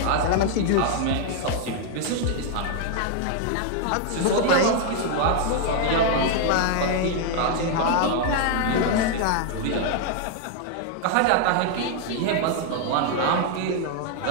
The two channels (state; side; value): different; both; correlation 0.00